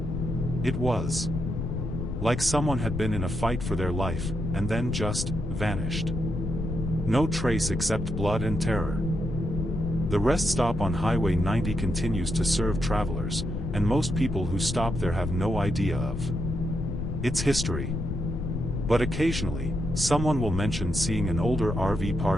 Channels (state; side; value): noise; left; rumble, 3 dB below the sound